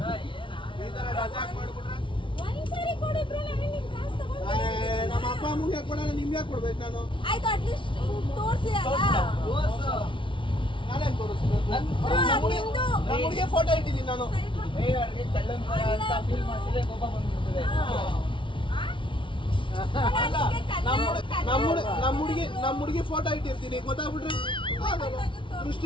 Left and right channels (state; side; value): late; right; 0.25 ms